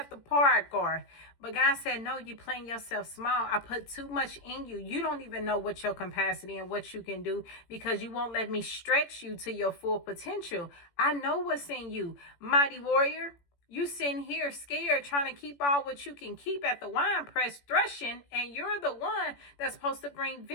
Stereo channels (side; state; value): right; late; 18 ms